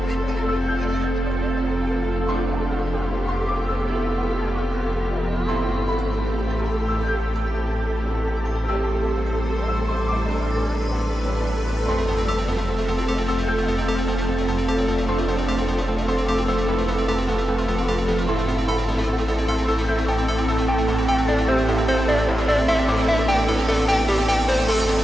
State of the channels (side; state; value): both; normal; correlation 0.90